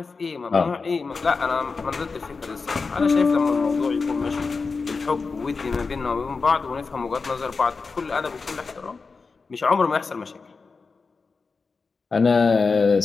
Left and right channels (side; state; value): right; quieter; 4.5 dB